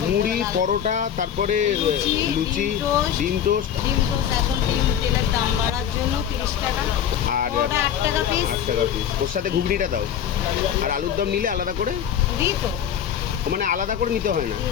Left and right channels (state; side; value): quieter; right; 9.3 dB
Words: মুড়ি, পরোটা, তারপরে লুচি, ডিম টোস্ট। ডিম টোস্ট এখন তেলের দাম বাড়ার জন্য 30 টাকা। আর ওটা 8 টাকা পিস। 8 টাকা পিস। ওর সাথে ঘুগনিটা দাও। আর আলুর দম নিলে আলাদা করে? দিই তো। ও মানে আলাদা করে নিতে হয় না?